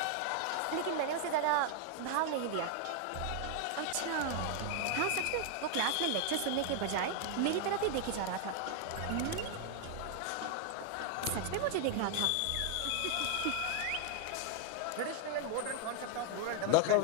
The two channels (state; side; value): different; both; correlation 0.00